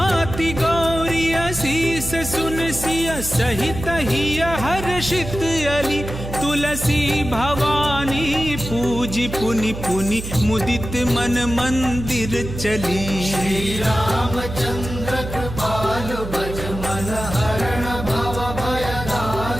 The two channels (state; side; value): noise; right; hum, 8 dB below the sound